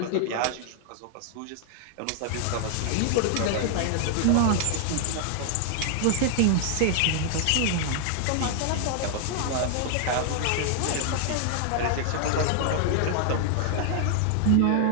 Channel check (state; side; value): different; both; correlation 0.00